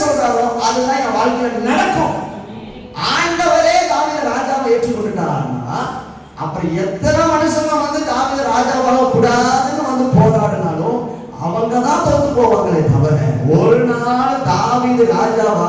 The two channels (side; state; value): both; identical; correlation 1.00